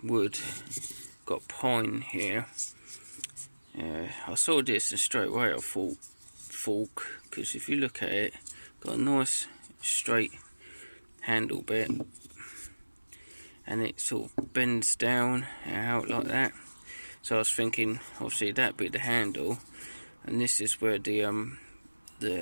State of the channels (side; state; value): both; inverted; correlation -1.00